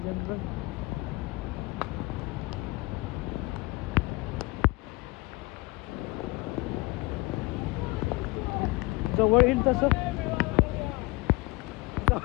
जवळ येईल तसं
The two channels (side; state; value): right; quieter; 22.9 dB